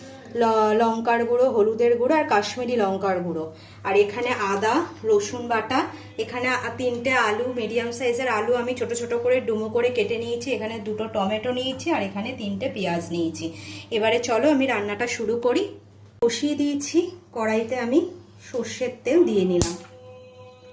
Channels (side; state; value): both; identical; correlation 1.00